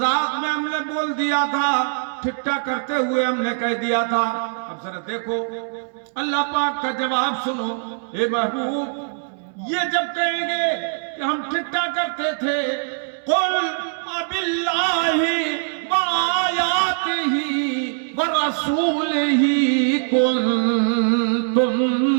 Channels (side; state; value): left; silent; 64 dB below the other